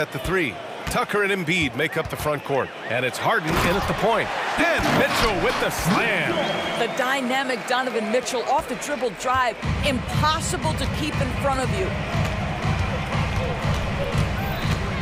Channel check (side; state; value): both; identical; correlation 1.00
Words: the 3. Tucker and Embiid make up the front court. And it's Harden in at the point. And Mitchell with the slam. The dynamic Donovan Mitchell off the dribble drive. Impossible to keep in front of you.